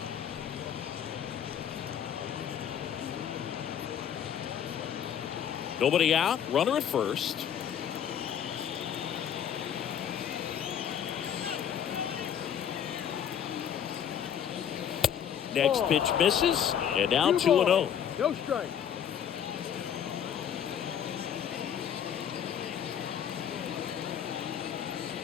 Nobody out, runner at first. Next pitch misses, and now 2-0. No strike.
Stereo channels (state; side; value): quieter; right; 9.0 dB